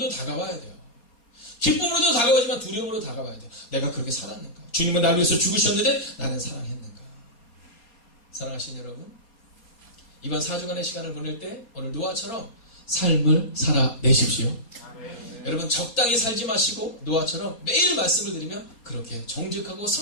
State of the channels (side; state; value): right; late; 4.3 ms